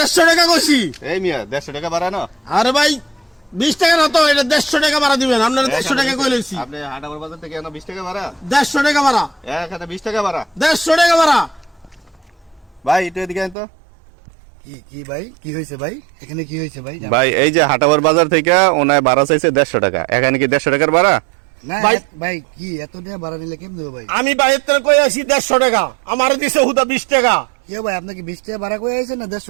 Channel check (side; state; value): left; drops out; at 13.6 s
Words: টাকা কইছি। এই মিয়া 150 টাকা ভাড়া না? আরে ভাই 20 টাকা না তো, এটা 150 টাকা ভাড়া দিবেন। আপনারা 150 টাকা কই লইছি। আপনি হাটাবার বাজার থেকে এনে 20 টাকা ভাড়া? 150 টাকা ভাড়া। এখানে 20 টাকা ভাড়া। 150 টাকা ভাড়া। ভাই একটু এদিকে আন তো। কি কি ভাই কি হয়েছে ভাই, এখানে কি হয়েছে ভাই? ভাই এই যে হাটাবার বাজার থেকে ওনায় ভাড়া চাইছে 150 টাকা, এখানে কি 150 টাকার ভাড়া? না ভাই ভাই কি এত টাকা ভাড়া নিলে কেমন দেবো ভাই? আমি বাইরের থেকে কই আছি 150 টাকা, আমারে দিছে হুদা 20 টাকা। কে ভাই আপনাকে 20 টাকা ভাড়া কই আইছেন না